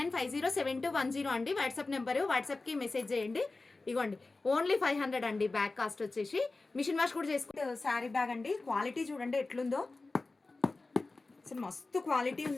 అండి వాట్సాప్ నెంబరు. వాట్సాప్కి మెసేజ్ చేయండి. ఇగోండి ఓన్లీ 500 అండి బ్యాగ్ కాస్ట్ వచ్చేసి. మిషన్ వాష్ కూడా చేసుకుంటే శారీ బ్యాగ్ అండి. క్వాలిటీ చూడండి ఎట్లుందో, అసలు మస్తు క్వాలిటీ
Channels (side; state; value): right; quieter; 3.5 dB